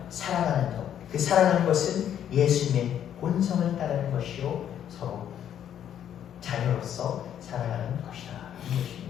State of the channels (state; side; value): quieter; right; 9.9 dB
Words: 사랑하는 것, 그 사랑하는 것은 예수님의 본성을 따르는 것이요 서로 자녀로서 사랑하는 것이다 이 것입니다.